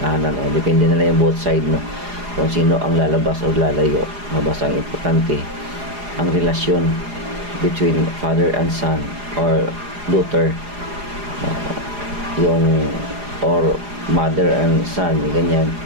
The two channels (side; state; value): left; late; 4.9 ms